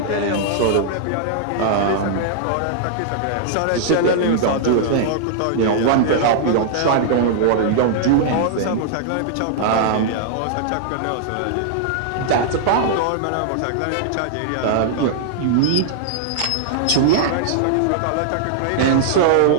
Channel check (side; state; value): both; different; correlation -0.01